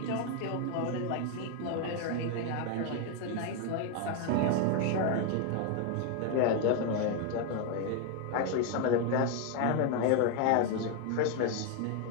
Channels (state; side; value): different; both; correlation 0.01